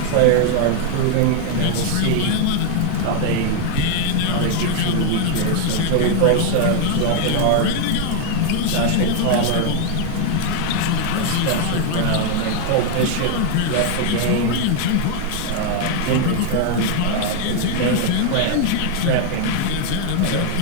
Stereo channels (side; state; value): both; different; correlation 0.01